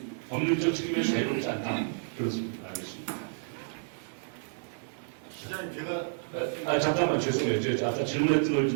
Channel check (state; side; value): silent; left; 58 dB below the other